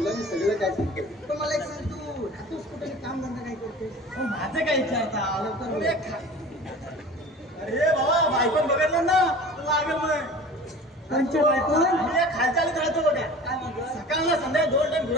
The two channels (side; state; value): both; normal; correlation 0.40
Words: मी सगळं काय सांगतो पण मला एक सांग तू राहतोस कुठे काम धंदा काय करतोस माझं काय विचारता लवकर अरे बाबा बायकोन बघितलं ना लागेल मग कोणच्या बायकोन? खालच्या आलीत राहतो बघा काय म्हणतो सकाळला संध्याकाळी 2 टाइम